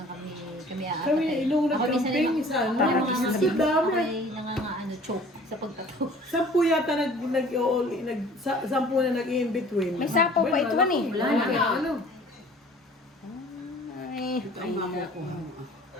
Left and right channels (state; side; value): normal; both; correlation 0.50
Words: kami apat. Kami, nung nag-campaign, isa, no? Mas dami. Ay, nangangaano choke sa pagtato. 10 yata sampu na nag-in-between. May sapaw pa ito, eh. Wala na. Kaya ano? Ay, Ito ang mamo ko.